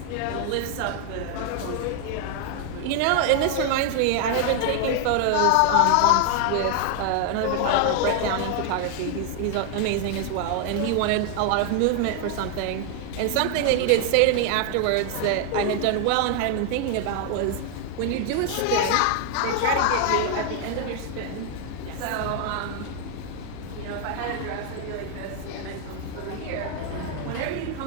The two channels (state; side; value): different; both; correlation 0.00